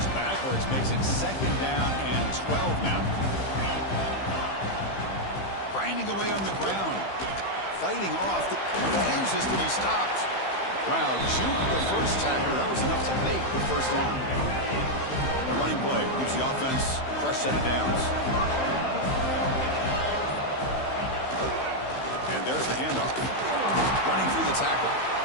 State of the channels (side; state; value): right; late; 15 ms